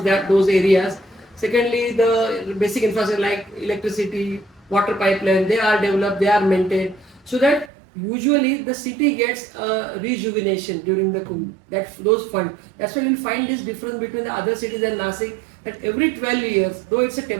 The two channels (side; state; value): left; drops out; at 7.7 s